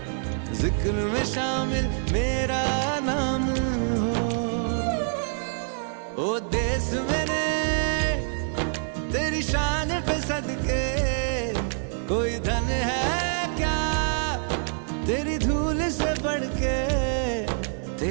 जिक्र में शामिल मेरा नाम हो। ओ देश मेरे तेरी शान पे सदके कोई धन है क्या, तेरी धूल से बढ़ के,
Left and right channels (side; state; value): left; silent; 61 dB below the other